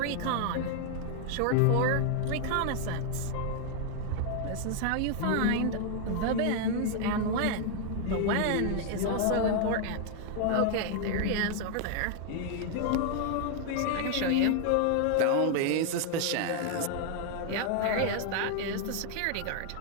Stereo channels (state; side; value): different; both; correlation 0.00